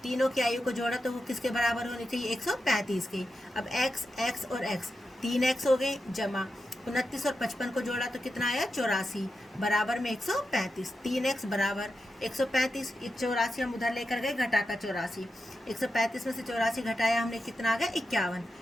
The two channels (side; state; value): both; normal; correlation 0.89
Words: तीनों की आयु को जोड़ा तो वो किसके बराबर होनी चाहिए? 135 की। अब x और x 3x हो गए, जमा 29 और 55 को जोड़ा तो कितना आया? 84, बराबर में 135। 3x बराबर 135, 84 हम उधर लेकर गए, घटा का 84। 135 में से 84 घटाया हमने, कितना आ गया? 51।